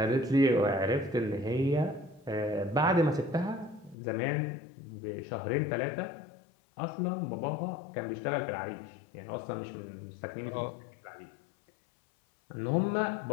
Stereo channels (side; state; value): right; drops out; at 4.0 s